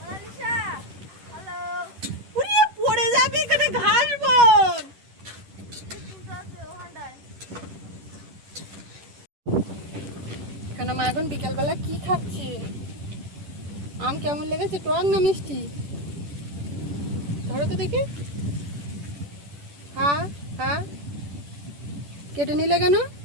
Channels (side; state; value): left; late; 10 ms